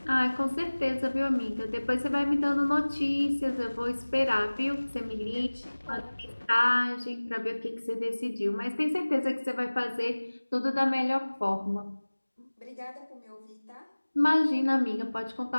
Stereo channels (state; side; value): inverted; both; correlation -1.00